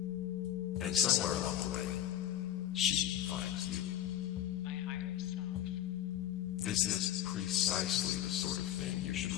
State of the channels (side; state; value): right; quieter; 11.8 dB